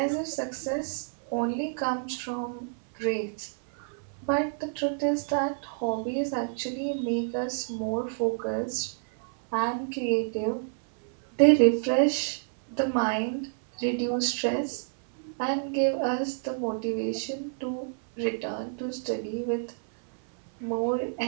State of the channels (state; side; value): silent; left; 59 dB below the other